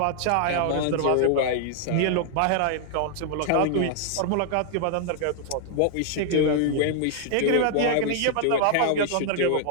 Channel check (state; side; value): different; both; correlation -0.01